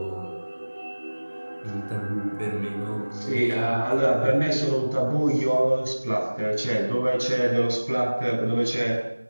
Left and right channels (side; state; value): both; inverted; correlation -1.00